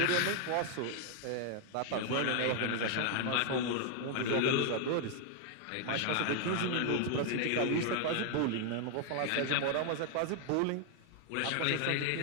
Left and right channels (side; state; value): both; different; correlation 0.00